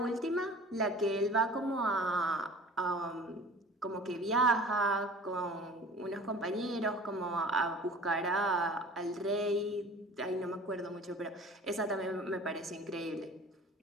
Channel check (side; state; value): both; normal; correlation 0.44